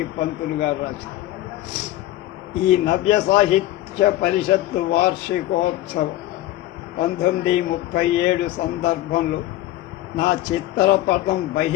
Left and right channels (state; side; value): quieter; right; 15.2 dB